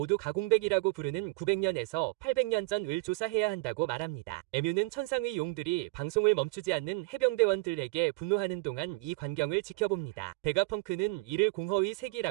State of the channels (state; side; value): quieter; left; 24.2 dB